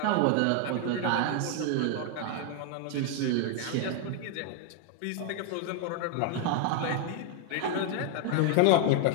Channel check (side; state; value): both; different; correlation 0.00